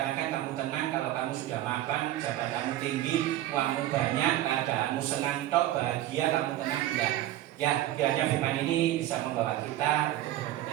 kamu tenang kalau kamu sudah mapan, jabatanmu tinggi, uangmu banyak, keadaanmu senang tok, bahagia, kamu tenang, enggak. Ya, kiranya firman ini bisa membawa kita untuk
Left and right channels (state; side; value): quieter; left; 14.1 dB